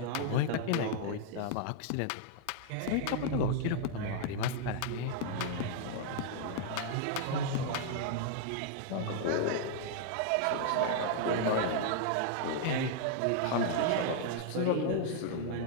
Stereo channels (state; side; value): different; both; correlation 0.00